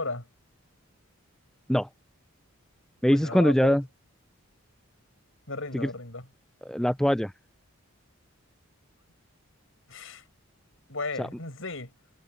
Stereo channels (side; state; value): both; normal; correlation 0.87